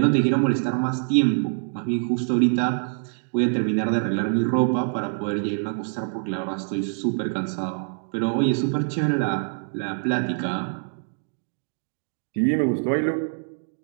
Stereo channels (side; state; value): left; silent; digital silence